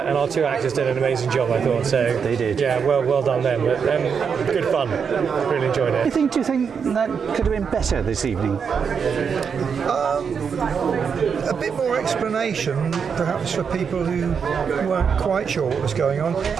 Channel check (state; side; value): quieter; left; 6.5 dB